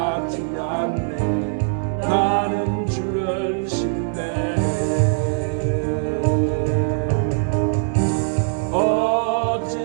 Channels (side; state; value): left; silent; digital silence